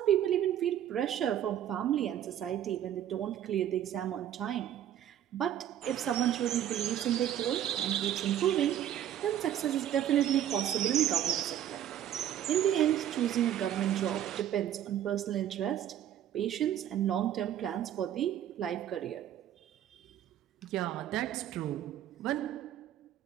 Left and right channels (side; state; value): left; quieter; 10.9 dB